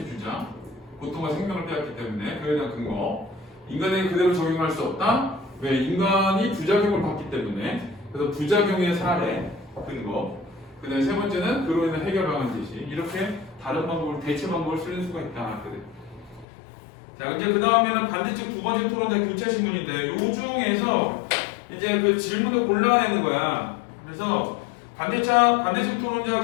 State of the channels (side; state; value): right; drops out; at 16.4 s